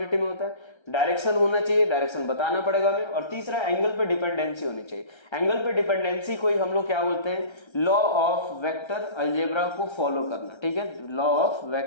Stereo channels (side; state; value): right; late; 1.3 ms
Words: में होता है, डायरेक्शन होना चाहिए, डायरेक्शन बताना पड़ेगा हमें, और तीसरा एंगल पे डिपेंडेंसी होनी चाहिए। एंगल पे डिपेंडेंसी को ही हम लोग क्या बोलते हैं? लॉ ऑफ वेक्टर अलजेब्रा को फॉलो करना, ठीक है, लॉ ऑफ